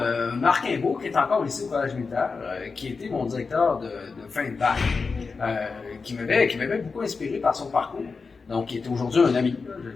Marc Imbeau, qui est encore ici au collège militaire, qui était mon directeur de fin de bac, qui m'avait beaucoup inspiré par son parcours. Donc, qui est aujourd'hui un ami, je le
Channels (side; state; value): right; quieter; 4.6 dB